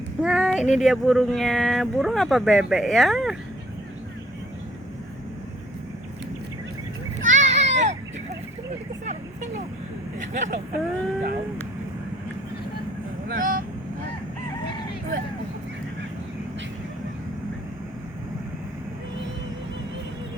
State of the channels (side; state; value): both; normal; correlation 0.59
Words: Nah, ini dia burungnya. Burung apa bebek ya?